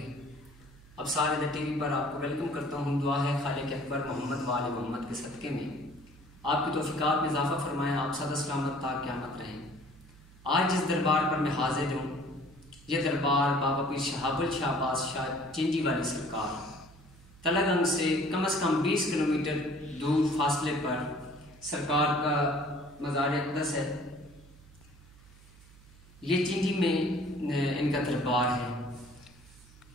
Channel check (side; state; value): right; noise; hum, 23 dB below the sound